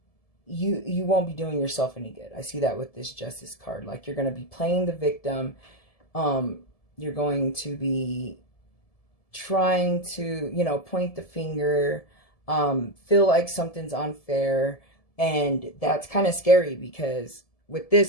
you won't be doing yourself any good. I see that with this Justice card. Like, you're going to be playing the victim. You're going to be trying to, you know, point the finger, feel like something's unfair, and that's kind of scary, because with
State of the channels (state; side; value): late; right; 1.7 ms